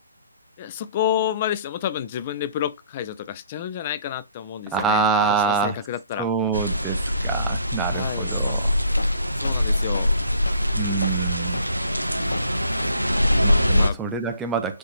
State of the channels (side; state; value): both; inverted; correlation -0.58